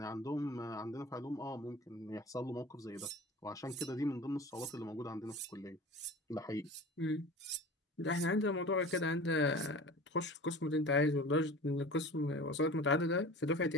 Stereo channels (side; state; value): both; normal; correlation 0.38